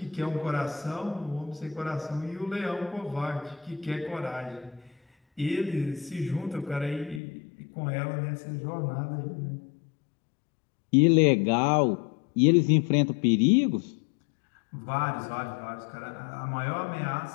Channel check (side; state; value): right; drops out; at 7.2 s